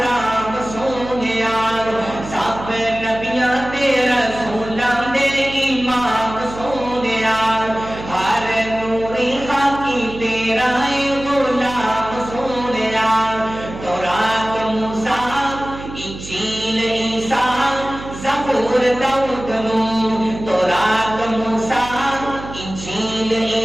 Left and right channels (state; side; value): noise; right; hum, 12 dB below the sound